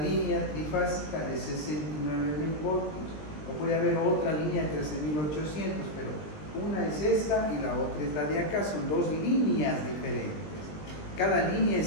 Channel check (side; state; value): right; late; 20 ms